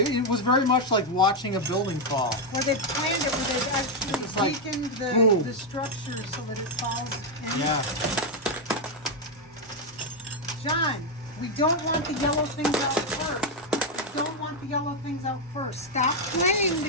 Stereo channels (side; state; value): both; normal; correlation 0.03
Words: was very much like watching a building fall. Where they planned it, where they've actually It's like, weakened boom. the structure so that it falls in. Yeah. John, we don't want the yellow things out first. We don't want the yellow things out first. Stop playing